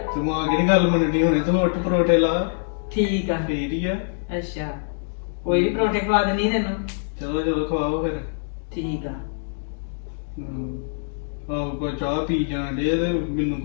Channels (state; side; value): silent; right; digital silence